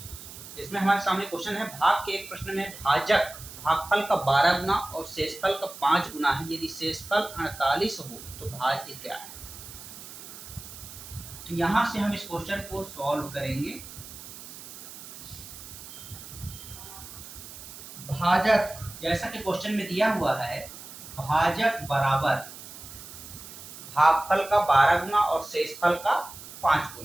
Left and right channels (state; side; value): noise; right; hiss, 14 dB below the sound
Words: इसमें हमारे सामने क्वेश्चन है, भाग के एक प्रश्न में भाजक भागफल का 12 गुना और शेषफल का 5 गुना है। यदि शेषफल 48 हो तो भाज्य क्या है। तो यहां से हम इस क्वेश्चन को सॉल्व करेंगे। भाजक जैसा कि क्वेश्चन में दिया हुआ है, भाजक बराबर भागफल का 12 गुना और शेषफल का 5